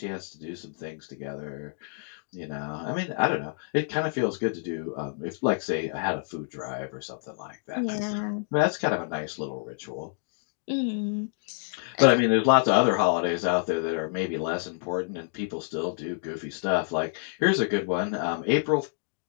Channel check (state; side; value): silent; right; digital silence